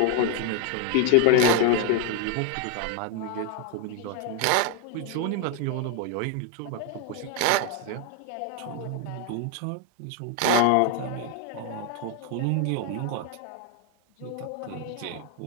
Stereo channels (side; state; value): both; different; correlation 0.01